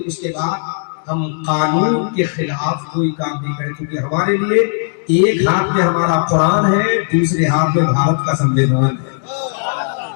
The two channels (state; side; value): silent; right; digital silence